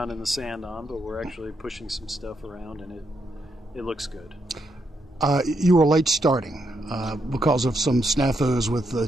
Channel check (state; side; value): normal; both; correlation 0.80